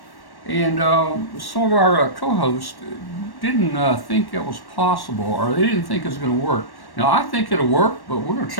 And some of our co-hosts didn't think it was possible, or they didn't think it was going to work. Now, I think it'll work, but we're going to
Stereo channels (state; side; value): late; right; 1.1 ms